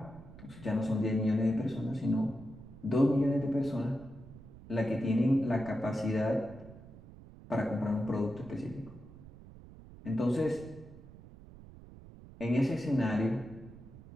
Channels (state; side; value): noise; right; rumble, 18 dB below the sound